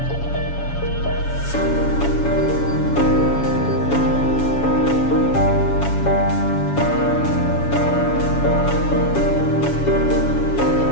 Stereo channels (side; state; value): right; late; 7.1 ms